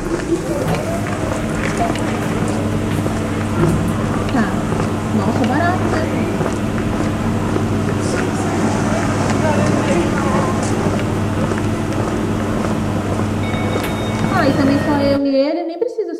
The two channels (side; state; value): both; identical; correlation 1.00